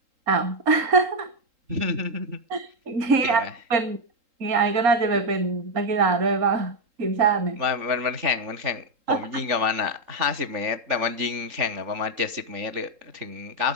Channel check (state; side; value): late; left; 3.8 ms